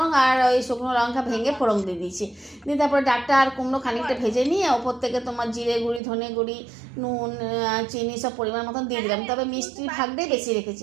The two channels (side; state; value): left; drops out; at 6.0 s